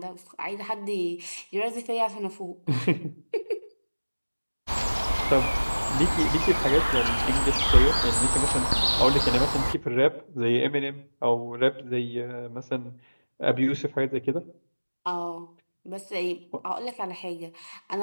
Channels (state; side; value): inverted; both; correlation -1.00